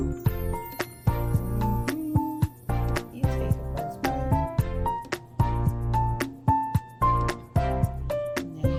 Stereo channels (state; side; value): identical; both; correlation 1.00